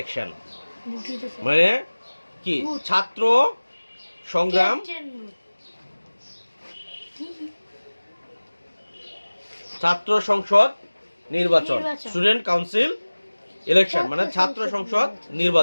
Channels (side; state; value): both; inverted; correlation -1.00